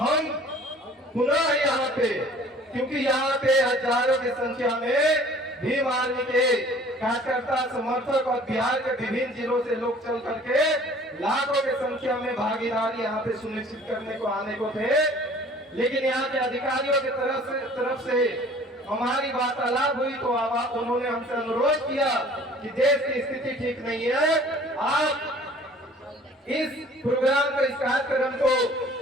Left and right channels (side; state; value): both; normal; correlation 0.51